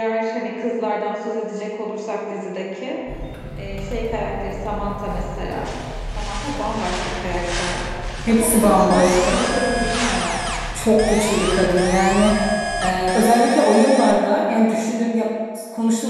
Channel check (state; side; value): identical; both; correlation 1.00